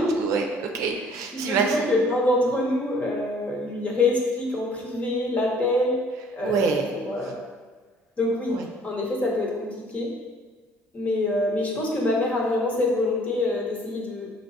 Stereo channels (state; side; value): normal; both; correlation 0.56